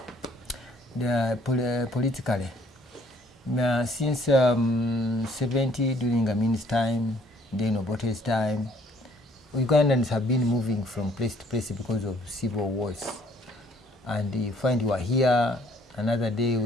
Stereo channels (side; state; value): both; normal; correlation 0.62